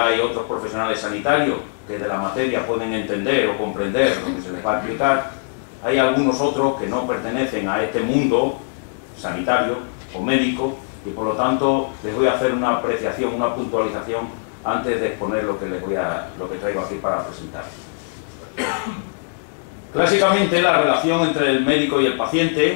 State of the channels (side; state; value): right; silent; digital silence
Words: otros profesionales sanitarios que de la materia pueden entender o comprender lo que se les va a explicar, hay algunos otros que no pertenecen a este mundo sanitario o médico y por lo tanto les voy a hacer una apreciación, una puntualización antes de exponer lo que traigo aquí para presentar. Clásicamente la relación entre el médico y el